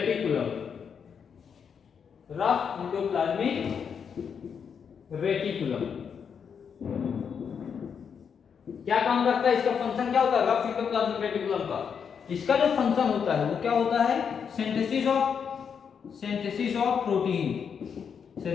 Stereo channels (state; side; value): quieter; right; 6.9 dB